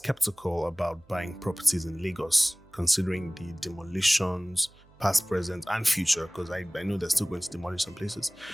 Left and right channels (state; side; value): noise; right; hum, 28 dB below the sound